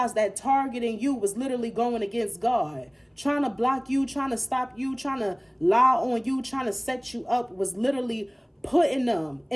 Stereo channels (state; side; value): identical; both; correlation 1.00